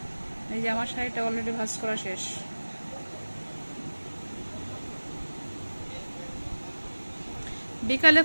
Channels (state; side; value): inverted; both; correlation -1.00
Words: এই যে আমার শাড়িটা অলরেডি ভাঁজ করা শেষ। বিকালে